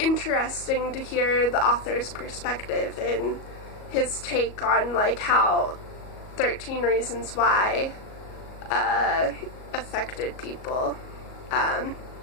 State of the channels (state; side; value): late; right; 37 ms